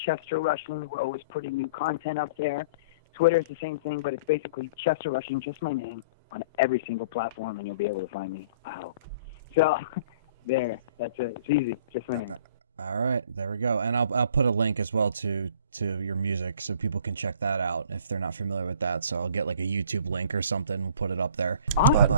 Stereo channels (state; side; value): inverted; both; correlation -0.49